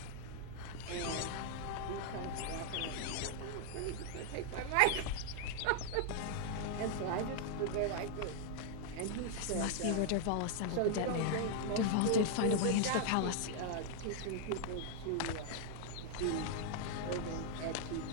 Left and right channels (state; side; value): different; both; correlation 0.00